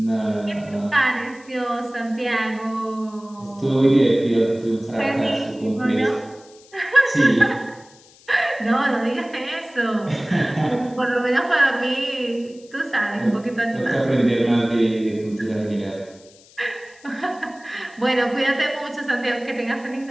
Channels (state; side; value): noise; left; hiss, 26 dB below the sound